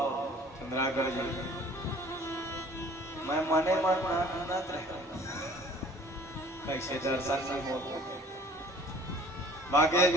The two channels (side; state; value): both; normal; correlation 0.52